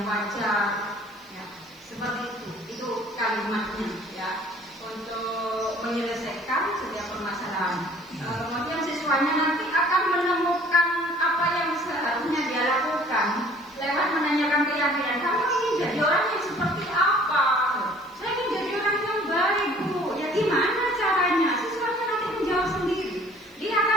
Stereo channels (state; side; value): noise; right; hiss, 29 dB below the sound